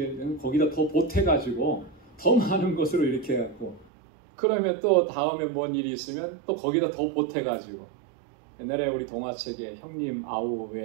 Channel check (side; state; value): left; drops out; at 3.9 s